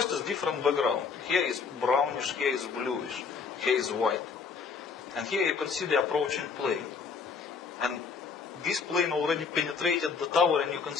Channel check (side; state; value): right; quieter; 5.5 dB